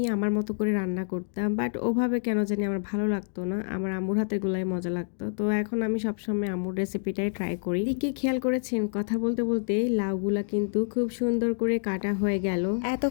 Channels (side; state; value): right; silent; digital silence